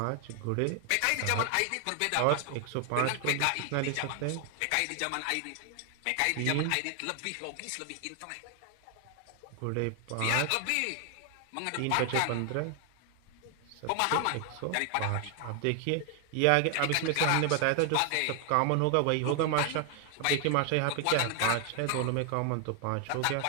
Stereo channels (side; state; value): both; different; correlation 0.00